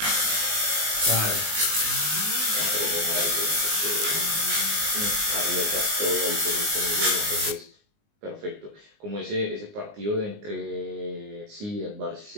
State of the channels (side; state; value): left; late; 19 ms